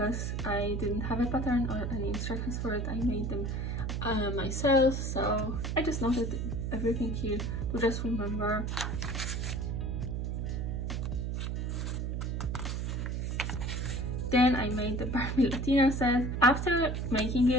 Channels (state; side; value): noise; right; hum, 1 dB below the sound